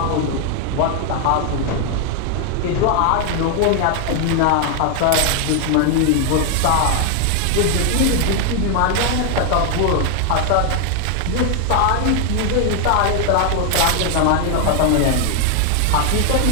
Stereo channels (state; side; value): different; both; correlation 0.00